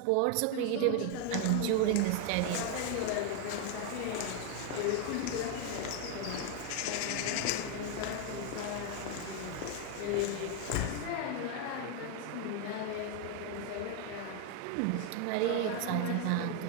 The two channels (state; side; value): different; both; correlation 0.01